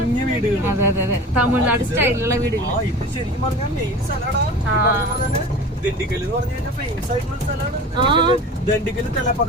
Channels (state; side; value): normal; both; correlation 0.36